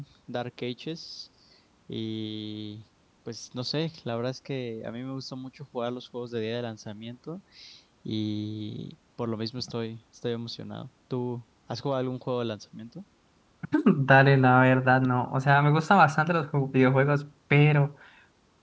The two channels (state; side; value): identical; both; correlation 1.00